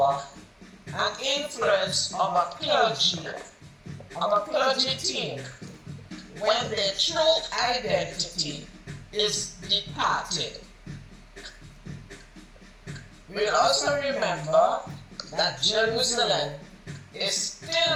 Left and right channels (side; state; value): both; identical; correlation 1.00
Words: and influence of a clergy team when their true identity is departed. We'll also remember that Jerusalem is